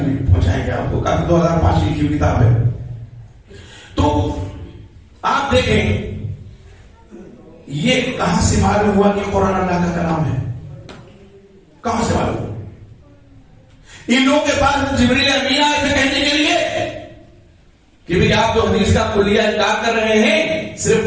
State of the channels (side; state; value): both; identical; correlation 1.00